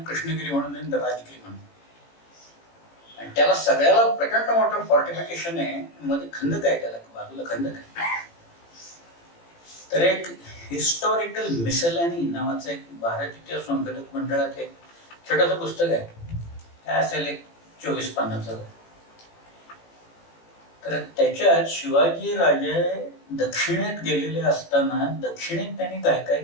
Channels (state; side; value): late; right; 18 ms